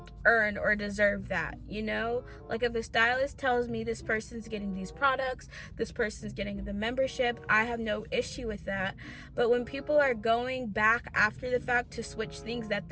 or deserve that. Like, if a stylist tells me this person's getting these products, this person's getting the membership, I have no issue with that. But when people are going back after the fact to switch things that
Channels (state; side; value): identical; both; correlation 1.00